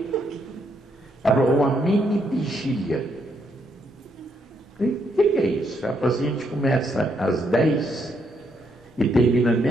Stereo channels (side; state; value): both; normal; correlation 0.75